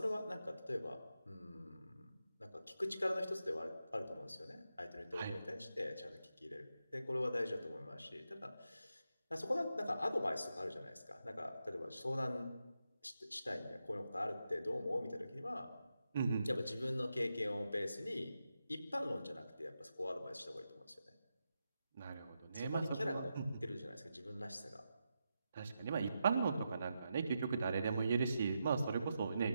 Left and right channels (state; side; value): inverted; both; correlation -0.87